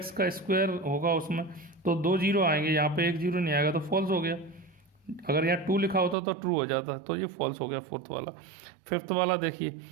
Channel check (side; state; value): left; drops out; at 6.2 s